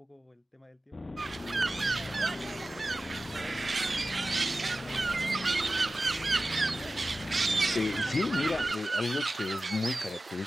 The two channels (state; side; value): normal; both; correlation 0.94